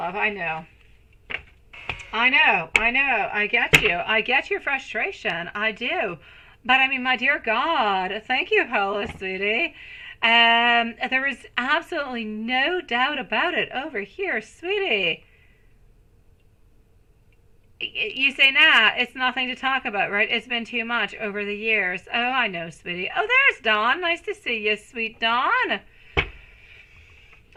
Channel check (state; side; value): identical; both; correlation 1.00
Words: I know. I get you. I get your frustration. I do. But I mean, my dear God, thank you, Paula, sweetie. There is absolutely no doubt about it over here, sweetie. You say, nah, it's nothing to talk about, right? It's been too much over the years. Oh, I know, sweetie. Oh, there's Dawn. Nice to see you, sweet Dawn.